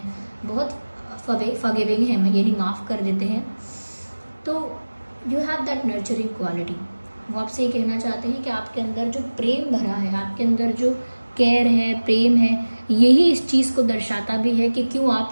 बहुत फॉरगिविंग हैं, यानी माफ़ कर देते हैं। तो you have that nurturing quality. वो आपसे ये कहना चाहते हैं कि आपके अंदर जो प्रेम भरा है, आपके अंदर जो केयर है, प्रेम है, यही इस चीज़ को दर्शाता भी है कि क्यों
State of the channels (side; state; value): both; inverted; correlation -1.00